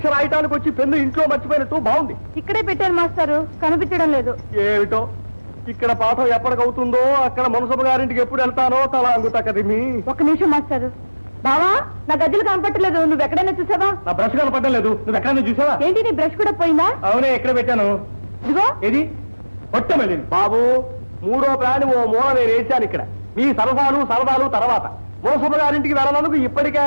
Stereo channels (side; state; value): both; inverted; correlation -1.00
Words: రాయటానికి వచ్చి పెన్ను ఇంట్లో మర్చిపోయినట్టు బాగుంది. ఇక్కడే పెట్టాను మాస్టారు, కనిపించడం లేదు. ఏమిటో ఇక్కడ పాఠం ఎప్పటికవుతుందో అక్కడ మునసబు గారింటికి ఎప్పుడు వెళ్తానో తల అంగుతకదిమి. ఒక్క నిమిషం మాస్టారు. బావా, నా గజ్జలు కనపట్టలేదు, నువ్వు ఎక్కడైనా చూసావా? నా బ్రష్ కనపడడం లేదు, నువ్వు ఎక్కడైనా చూసావా? ఏంటి నీ బ్రష్ కూడా పోయిందా? అవునే, ఎక్కడ పెట్టాను? ఇదిగో. ఏది కొట్టమల్లి బాబు, మూడో ప్రాణి ఓ మూల నేను వేసాను. ఇక్కడ మీ సరదాలు తర్వాత మునసబు గారింటికి వెళ్ళనందుకు ఇప్పటికే